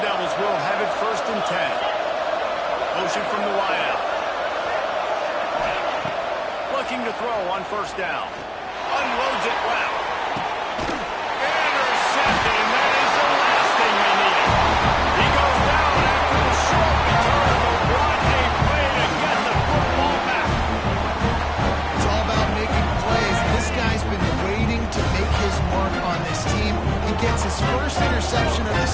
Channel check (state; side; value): identical; both; correlation 1.00